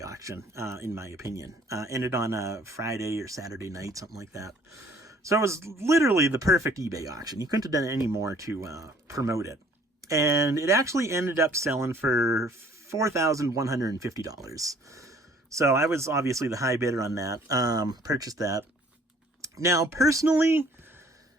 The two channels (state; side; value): normal; both; correlation 0.57